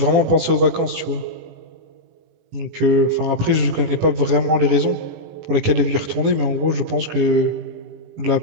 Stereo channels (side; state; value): left; late; 18 ms